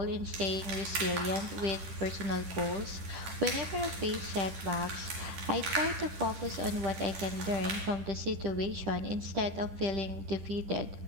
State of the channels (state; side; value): late; left; 10 ms